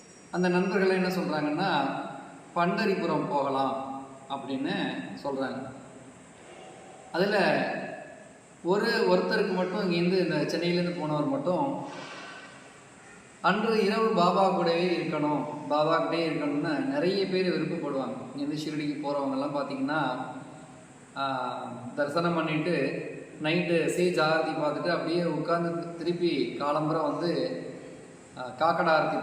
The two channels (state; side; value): identical; both; correlation 1.00